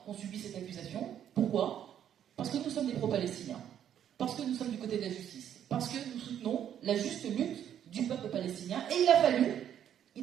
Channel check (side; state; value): left; quieter; 9.8 dB